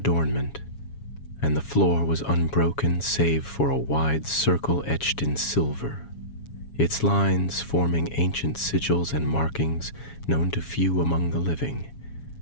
and the floor was unbroken save for a wide circle etched in silver, its lines forming ancient sigils and markings known to few among the living.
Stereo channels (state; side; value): late; right; 7.2 ms